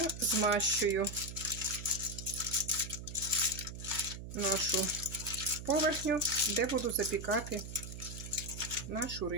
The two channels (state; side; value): noise; right; hum, 10 dB below the sound